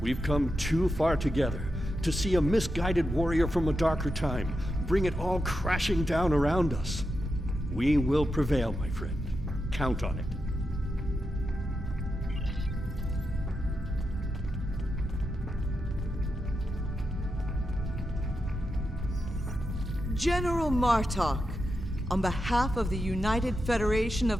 We've come too far together to see a misguided warrior from a darker time bring it all crashing down around us. We will prevail, my friend. Count on it. General Martok, on behalf of the United Federation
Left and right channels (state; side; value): normal; both; correlation 0.87